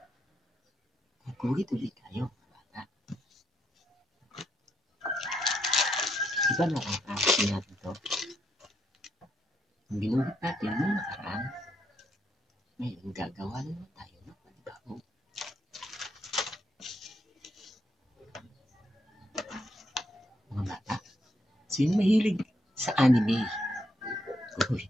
Guguhit ulit tayo, bata. Di ba nakakakasin natin to? Ang ginuhit natin nung nakaraan, ngayon gagawa na naman tayo ng panibago. Mga bata, sino mahilig sa anime? Guguhit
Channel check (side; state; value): both; normal; correlation 0.77